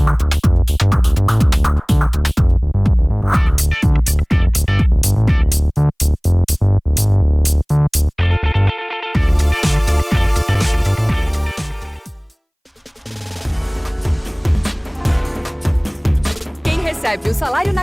Recebe o salário na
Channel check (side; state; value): both; identical; correlation 1.00